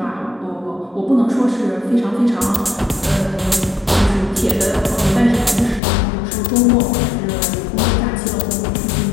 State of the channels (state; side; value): drops out; right; at 5.8 s